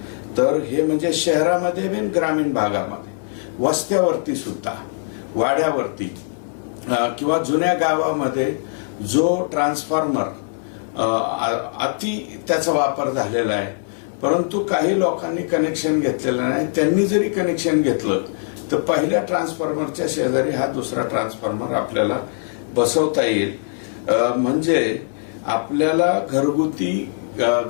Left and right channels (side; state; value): right; silent; digital silence